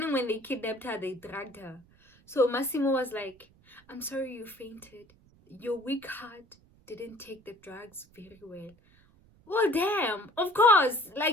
when they kidnapped her, they dragged her. So Massimo was like, I'm sorry you fainted. Your weak heart didn't take the drugs very well. Well, damn, of course,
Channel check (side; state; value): right; noise; rumble, 29 dB below the sound